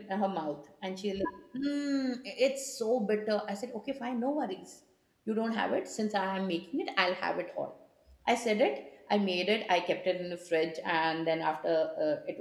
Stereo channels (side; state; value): both; identical; correlation 1.00